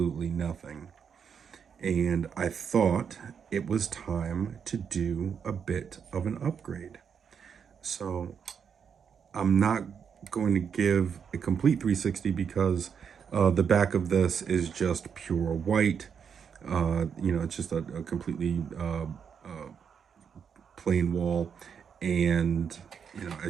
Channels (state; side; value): quieter; left; 7.1 dB